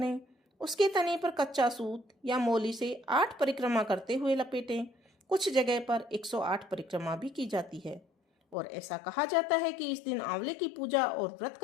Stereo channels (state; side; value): drops out; right; at 8.6 s